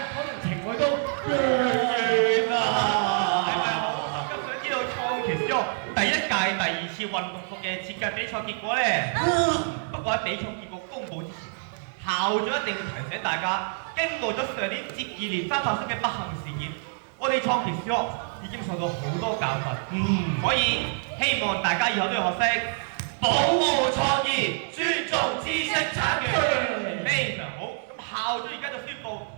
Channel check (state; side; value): silent; left; 57 dB below the other